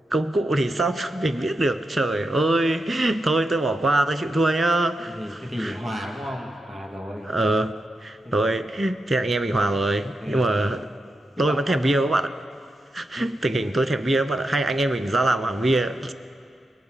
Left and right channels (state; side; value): normal; both; correlation 0.87